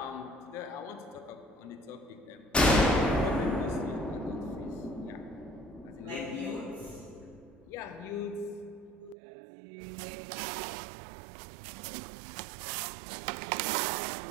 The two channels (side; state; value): left; drops out; at 9.2 s